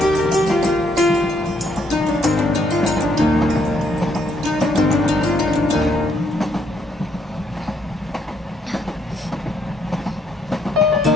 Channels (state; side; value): normal; both; correlation 0.72